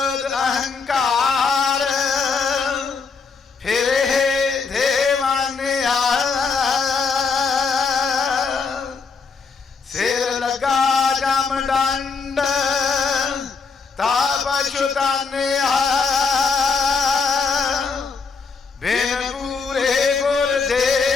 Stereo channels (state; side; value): quieter; right; 5.0 dB